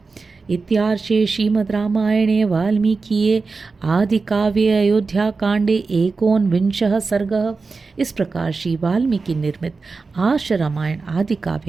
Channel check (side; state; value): left; quieter; 4.3 dB